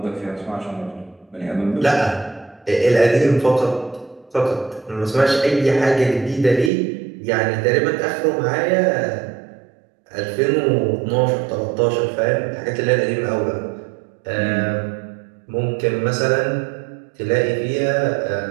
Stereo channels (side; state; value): left; drops out; at 6.7 s